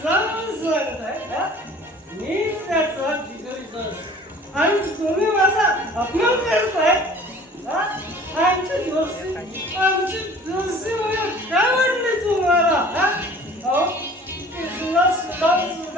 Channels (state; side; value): normal; both; correlation 0.47